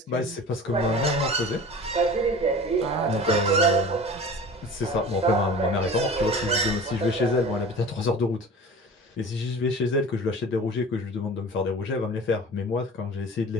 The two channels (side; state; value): both; normal; correlation 0.39